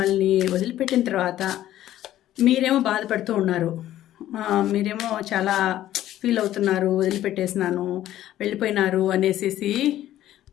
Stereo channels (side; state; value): right; quieter; 13.2 dB